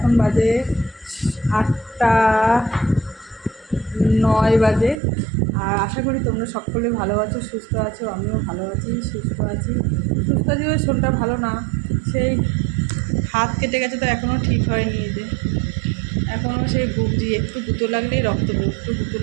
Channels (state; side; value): drops out; left; at 5.0 s